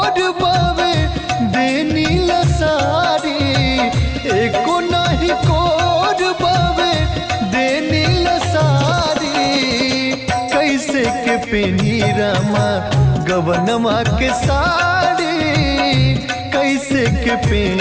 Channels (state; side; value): identical; both; correlation 1.00